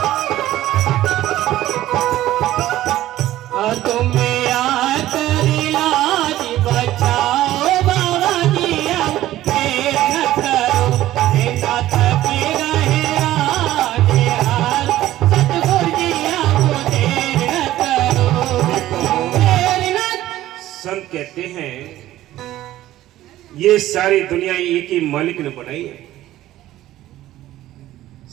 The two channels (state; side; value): quieter; left; 14.5 dB